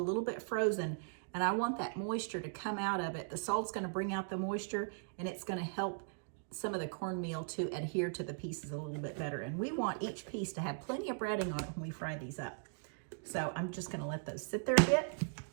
bit frozen, and I want that moisture to come out of it. The salt's gonna bring out the moisture, and it's gonna help some of the cornmeal to adhere to the pieces a little bit better. And we want each piece to have plenty of breading on it when we fry these up. So I'm just gonna let those sit there a bit.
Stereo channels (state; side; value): silent; left; digital silence